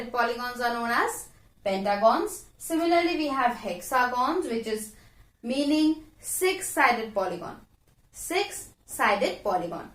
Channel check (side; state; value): both; identical; correlation 1.00